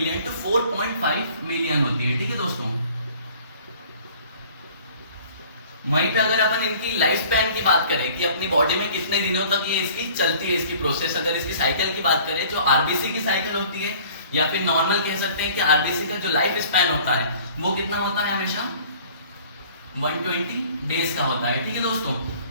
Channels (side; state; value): both; inverted; correlation -0.50